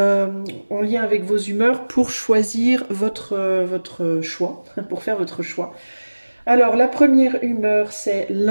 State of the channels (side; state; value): both; inverted; correlation -1.00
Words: lien avec vos humeurs pour choisir votre choix, pour faire votre choix. Alors la première humeur c'est